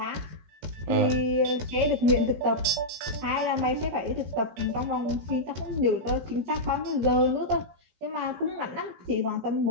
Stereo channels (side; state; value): left; late; 17 ms